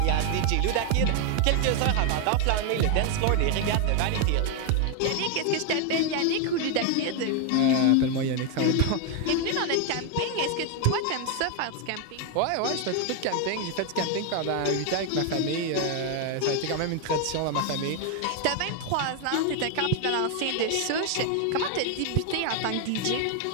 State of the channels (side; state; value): both; different; correlation 0.01